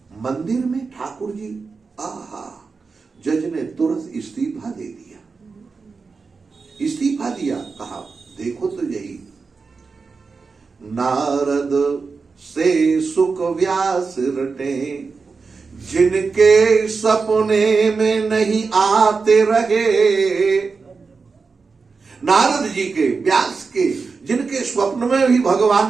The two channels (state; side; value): quieter; left; 4.7 dB